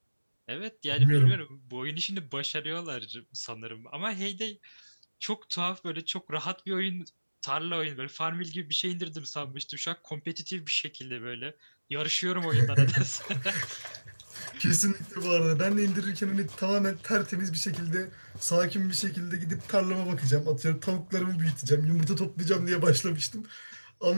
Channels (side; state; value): both; inverted; correlation -1.00